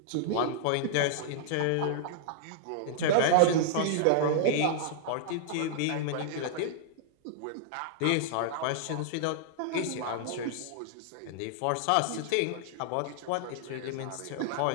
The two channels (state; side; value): different; both; correlation -0.01